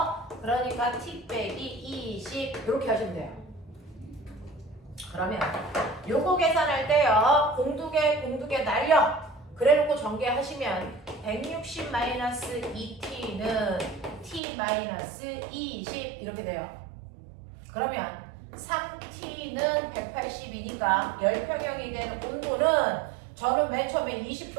그러니까 T 빼기 20 이렇게 하시면 돼요. 그러면 요거 계산할 때요. 공두개 날려. 그래놓고 전개하시면 160-2T는 T-20 이렇게 돼요. 그러면 3T는 180이니까 열평형이 되는 온도는 저는 맨 처음에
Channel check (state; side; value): drops out; left; at 14.4 s